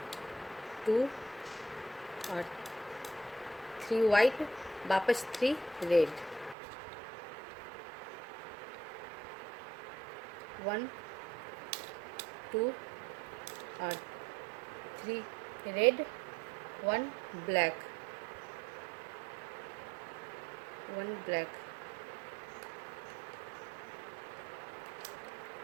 2 और 3 वाइट, वापस 3 रेड, 1 2 और 3 रेड, 1 ब्लैक, 1 ब्लैक,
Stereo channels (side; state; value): left; drops out; at 6.6 s